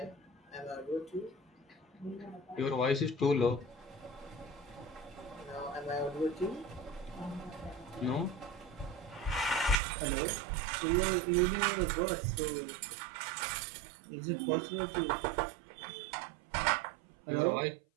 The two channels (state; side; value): drops out; left; at 9.8 s